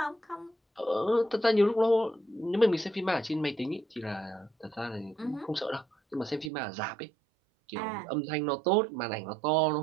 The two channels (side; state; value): left; drops out; at 6.5 s